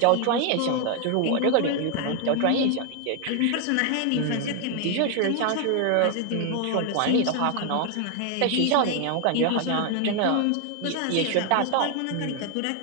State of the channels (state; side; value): different; both; correlation 0.00